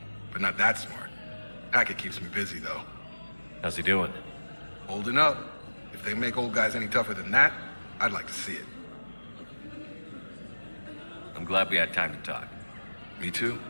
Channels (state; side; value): inverted; both; correlation -1.00